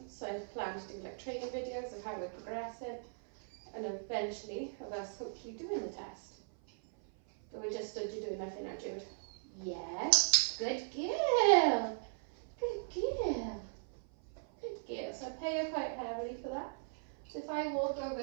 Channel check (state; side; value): silent; left; 52 dB below the other